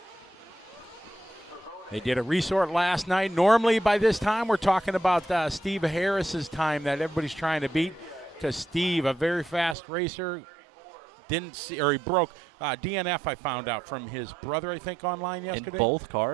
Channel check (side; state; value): left; drops out; at 9.8 s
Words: They did a resort last night. Normally by this time we're talking about Steve Harris's time that everybody's trying to beat, because Steve, a very fast racer, didn't see, or he broke DNF, I found out from his brother, I think, online yesterday. In both